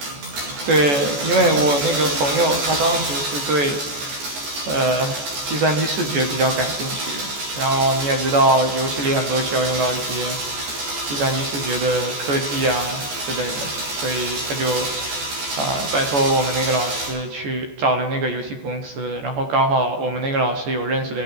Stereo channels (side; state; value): left; late; 14 ms